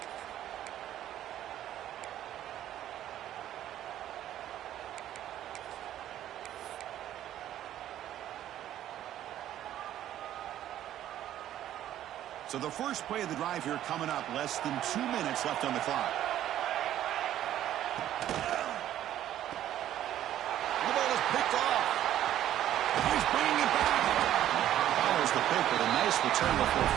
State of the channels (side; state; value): left; quieter; 12.1 dB